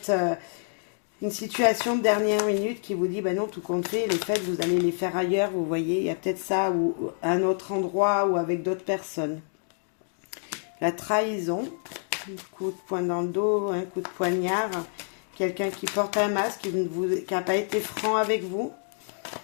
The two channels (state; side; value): silent; right; 60 dB below the other